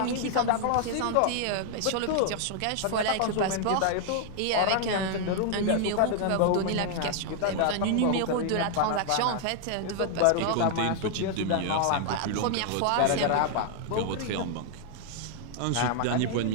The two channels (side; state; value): both; different; correlation 0.00